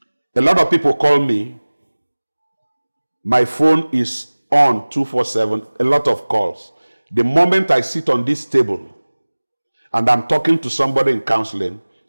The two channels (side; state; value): both; inverted; correlation -1.00